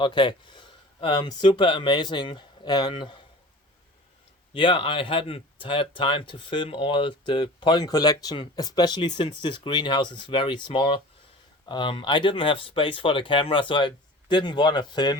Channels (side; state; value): both; normal; correlation 0.40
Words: Super amazing. And yeah, I hadn't had time to film all the pollen collection, especially since this greenhouse is very small. I didn't have space for the camera, so I didn't want to